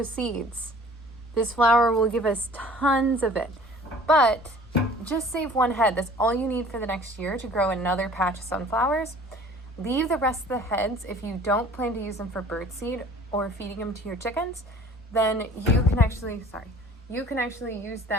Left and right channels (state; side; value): normal; both; correlation 0.49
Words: seeds. This flower will give us tons of it, but just save one head. That's all you need for the next year to grow another patch of sunflowers. Leave the rest of the heads. If you don't plan to use them for birdseed or feeding them to your chickens, then you can actually use